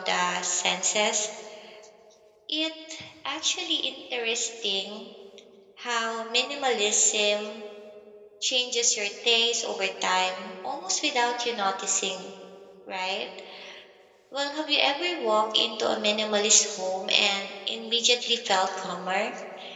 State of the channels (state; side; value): identical; both; correlation 1.00